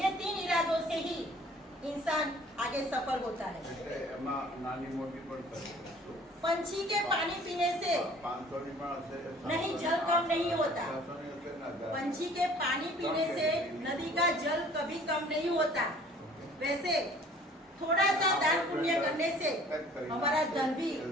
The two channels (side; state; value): both; normal; correlation 0.52